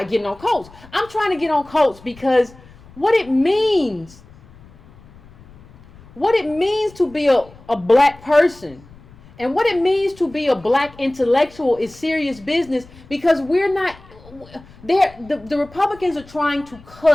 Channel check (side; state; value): left; noise; rumble, 23 dB below the sound